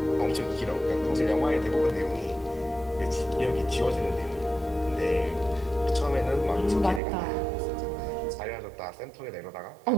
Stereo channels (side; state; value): left; drops out; at 7.0 s